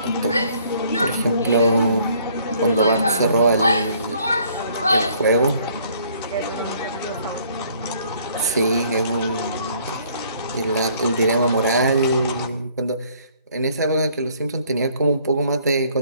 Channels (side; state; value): both; inverted; correlation -0.61